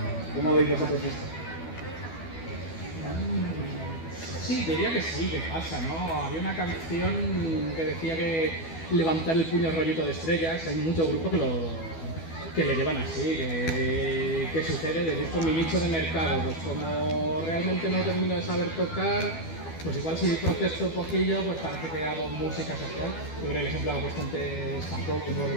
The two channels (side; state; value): right; late; 12 ms